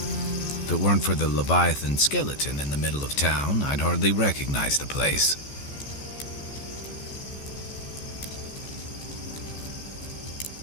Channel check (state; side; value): late; right; 14 ms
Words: If it weren't for the Leviathan skeleton in the middle of town, I'd hardly recognize the place.